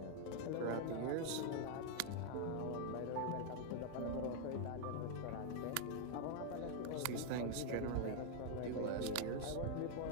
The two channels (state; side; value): different; both; correlation 0.00